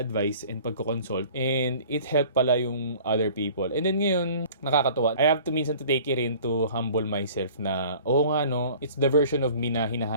and pagko-consult. And it helped pala yung other people. And then ngayon, nakakatuwa. I have to minsan to take it in to humble myself na, it's the version of me na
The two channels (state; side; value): inverted; both; correlation -0.48